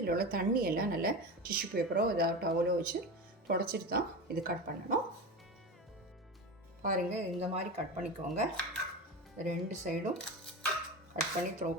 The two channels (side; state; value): both; normal; correlation 0.25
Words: உள்ள தண்ணியெல்லாம் நல்லா டிஷ்யூ பேப்பரோ ஏதாவது டவலோ வச்சு தொடச்சிட்டு தான் இது கட் பண்ணணும். பாருங்கள், இந்த மாதிரி கட் பண்ணிக்கோங்க. 2 சைடும் கட் பண்ணி த்ரோ